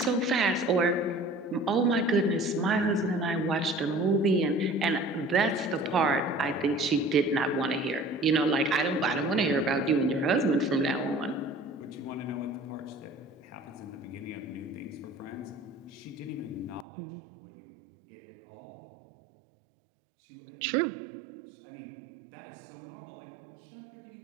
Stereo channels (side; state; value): left; drops out; at 16.9 s